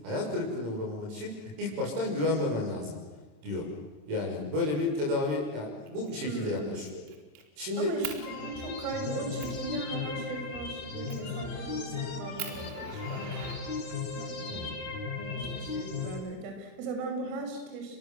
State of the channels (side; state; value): left; late; 27 ms